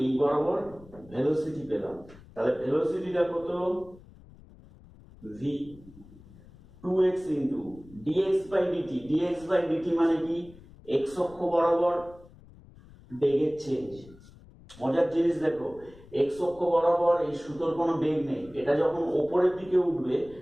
এই বরাবর ভেলোসিটি পেলাম। তাহলে ভেলোসিটিটা কত? V 2x into dx by dt। dx by dt মানে কি? x অক্ষ বরাবর বেগের চেঞ্জ। মজার জিনিস দেখো, x অক্ষ বরাবর এই সুতোর কোনো বেগ নেই, এটা যখন ওপরের দিকে উঠবে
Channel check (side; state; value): left; noise; rumble, 22 dB below the sound